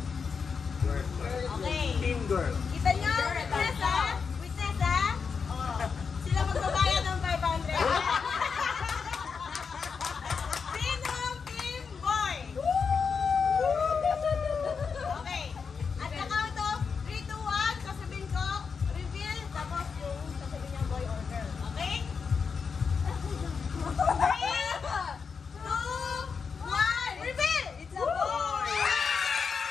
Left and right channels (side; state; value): right; quieter; 5.7 dB